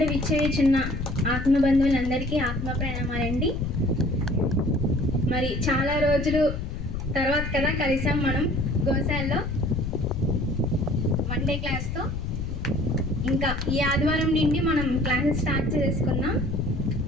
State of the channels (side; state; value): left; noise; rumble, 5 dB below the sound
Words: విచ్చేయుచున్న ఆత్మబంధువులందరికీ ఆత్మ ప్రణామాలండి. మరి చాలా రోజులు తర్వాత కదా కలిసాం మనం గోశాలలో వన్ డే క్లాస్తో. ఇంకా ఈ ఆదివారం నుండి మనం క్లాసెస్ స్టార్ట్ చేసుకుందాం.